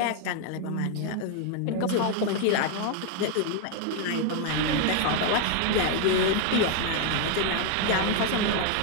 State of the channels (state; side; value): different; both; correlation 0.00